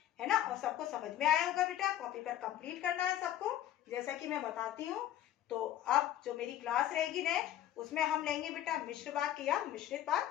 है ना। और सबको समझ में आया होगा बेटा, कॉपी पर कंप्लीट करना है सबको, जैसा कि मैं बताती हूँ। तो अब जो मेरी क्लास रहेगी नेक्स्ट, उसमें हम लेंगे बेटा मिश्र वाक्य या मिश्रित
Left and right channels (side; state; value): right; quieter; 12.3 dB